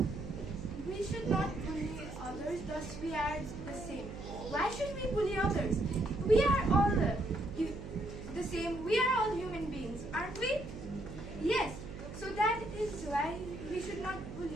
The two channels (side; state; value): right; noise; hum, 10 dB below the sound